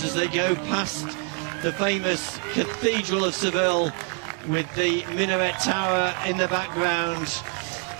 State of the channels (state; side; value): quieter; left; 38.5 dB